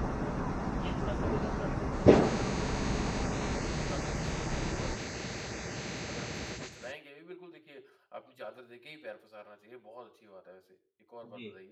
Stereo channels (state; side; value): identical; both; correlation 1.00